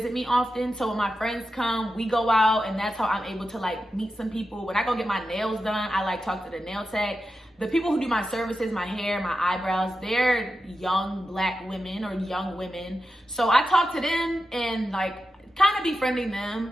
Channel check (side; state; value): both; normal; correlation 0.90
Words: me often, so when my friends come, we go out, and that's how I'm able to like meet some people. When I go get my nails done, I like talk to the nail tech. The people who do my services, my hair, my eyebrows, they're young black women or young women. So I talk to them and like kind of befriending them.